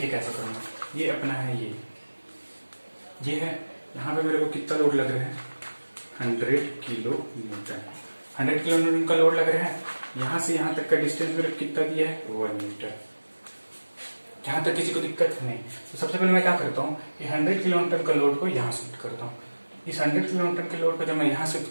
कैसा करूंगा, ये अपना है, ये है, यहाँ पे मेरे को कितना लोड लग रहा है, 100 किलो न्यूटन। 100 किलो न्यूटन का लोड लग रहा है। यहां से यहां तक का डिस्टेंस मेरे कितना दिया है, 1 मीटर। यहां तक किसी को दिक्कत नहीं। तो सबसे पहले मैं क्या करता हूँ, ये 100 किलो न्यूटन का लोड को यहाँ शिफ्ट करता हूँ। इस 100 किलो न्यूटन के लोड को जब मैं यहाँ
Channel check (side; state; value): both; inverted; correlation -1.00